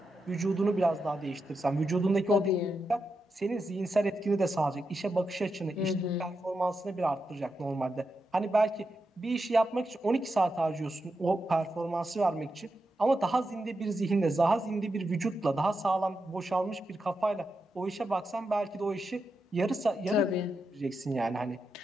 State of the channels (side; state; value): both; normal; correlation 0.87